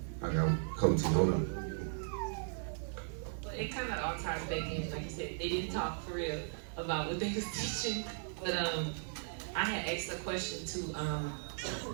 I got coach, hold on. Well, it kind of all ties back in, like you said, they didn't talk for real about what they was teaching, but I had asked a question to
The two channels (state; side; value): silent; left; digital silence